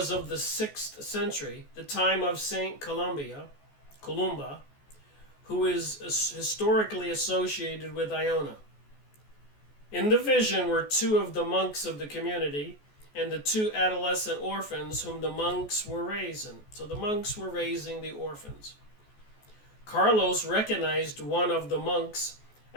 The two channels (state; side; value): late; right; 14 ms